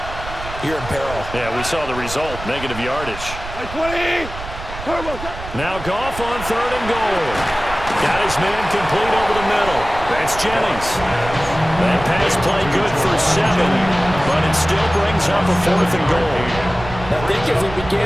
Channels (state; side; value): noise; right; rumble, 11 dB below the sound